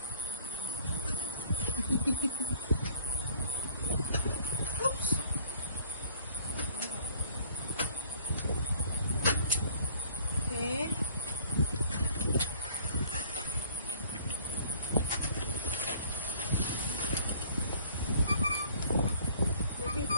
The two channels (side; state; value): both; inverted; correlation -0.56